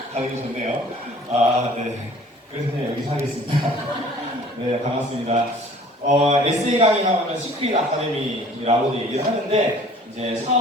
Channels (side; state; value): both; normal; correlation 0.50